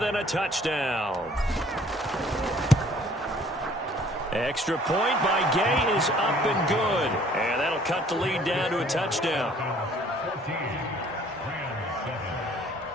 a touchdown. Extra point by Gay is up and good. And that'll cut the lead down to a touchdown.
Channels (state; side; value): normal; both; correlation 0.57